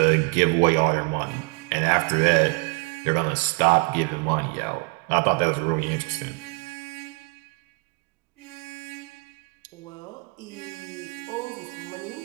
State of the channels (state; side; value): quieter; left; 31.9 dB